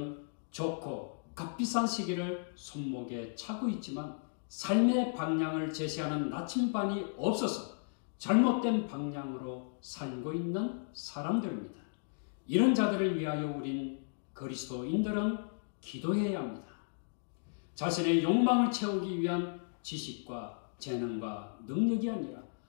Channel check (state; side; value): silent; right; digital silence